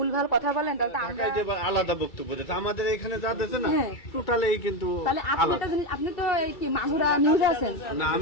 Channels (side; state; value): right; late; 2.3 ms